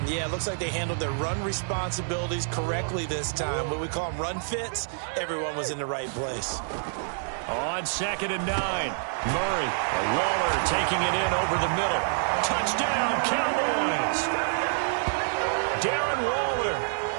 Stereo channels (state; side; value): silent; left; digital silence